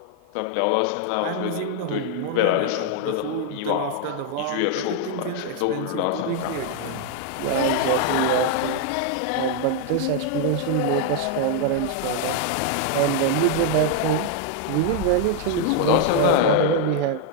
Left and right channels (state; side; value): different; both; correlation 0.00